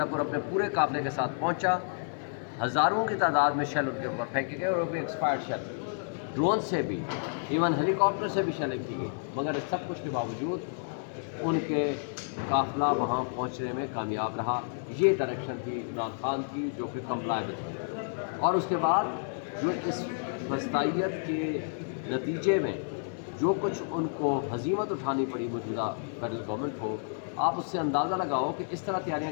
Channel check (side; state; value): right; silent; 58 dB below the other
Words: अपने पूरे काफ़िले के साथ पहुँचा। हज़ारों की तादाद में शेल उनके ऊपर फेंके गए, और वो भी एक्सपायर्ड शेल, ड्रोन से भी, इवन हेलीकॉप्टर से भी शेलिंग की गई। मगर इस सब कुछ के बावजूद उनके काफ़िला वहाँ पहुँचने में कामयाब रहा। ये डायरेक्शन थी इमरान खान की, जो कि कंप्लायबल थी। और उसके बाद जो इस फस्तायत के नतीजे में जो कुछ उनको हजीमत उठानी पड़ी मौजूदा फेडरल गवर्नमेंट को, आप उससे अंदाज़ा लगाओ कि इस तरह